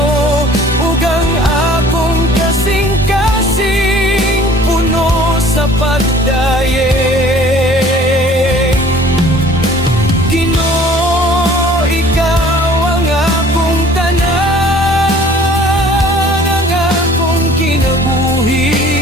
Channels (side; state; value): both; normal; correlation 0.52